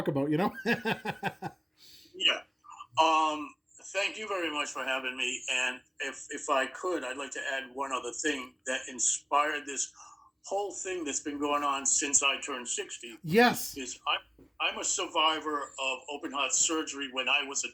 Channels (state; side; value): identical; both; correlation 1.00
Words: about, Yeah. Thank you very much for having me. And if I could, I'd like to add one other thing that inspired this whole thing that's been going on since I turned 60. Yes. Is I'm a survivor of open heart surgery when I was a